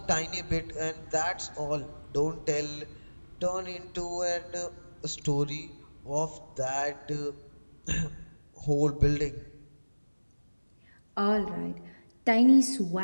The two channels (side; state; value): both; inverted; correlation -1.00